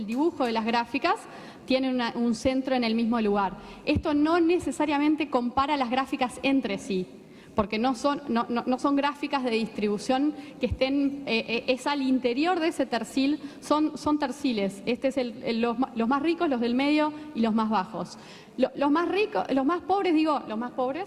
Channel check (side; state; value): both; identical; correlation 1.00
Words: dibujo de las gráficas, tienen un centro en el mismo lugar. Esto no necesariamente compara las gráficas entre sí, porque no son gráficas de distribución que estén, es al interior de ese tercil, son terciles. Este es los más ricos, los del medio y los más bajos. Los más ricos, los más pobres,